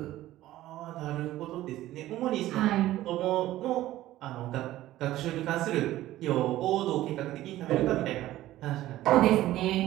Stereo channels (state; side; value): quieter; left; 15.0 dB